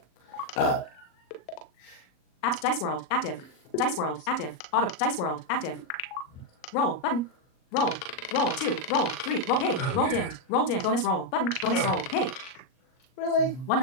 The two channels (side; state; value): right; late; 38 ms